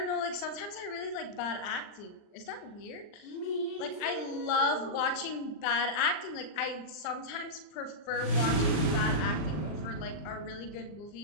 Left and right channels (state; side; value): late; right; 39 ms